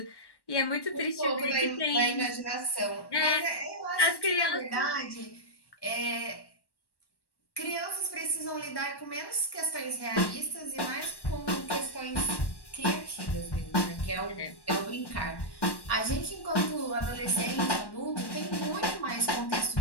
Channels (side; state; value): right; late; 1.1 ms